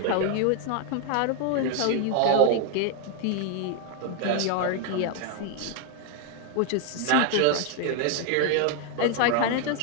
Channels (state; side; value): different; both; correlation 0.00